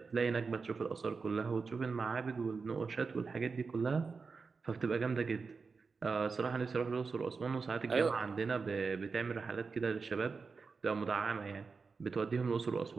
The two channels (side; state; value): left; quieter; 4.7 dB